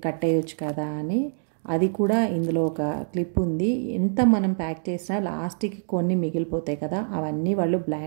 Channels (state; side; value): silent; left; digital silence